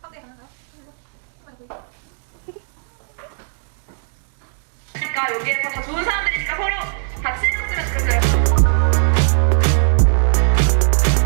그러니까 여기에서 다 좋은 사람들이니까 서로 같이 해줬으면 좋겠어요.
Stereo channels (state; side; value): silent; left; 64 dB below the other